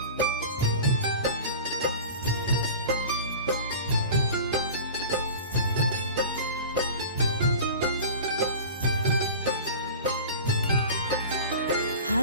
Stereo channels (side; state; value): both; inverted; correlation -0.36